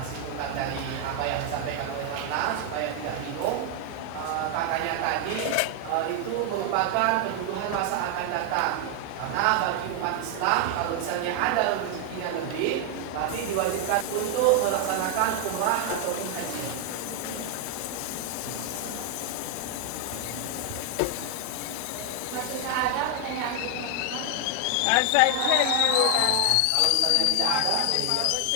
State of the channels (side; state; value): both; different; correlation 0.00